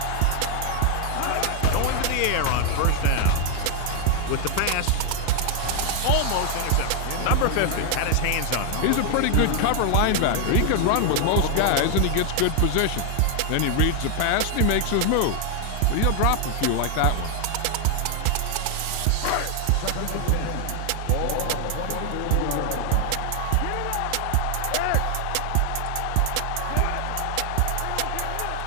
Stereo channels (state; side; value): different; both; correlation 0.00